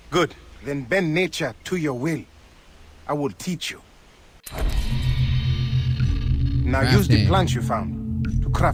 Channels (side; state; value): both; identical; correlation 1.00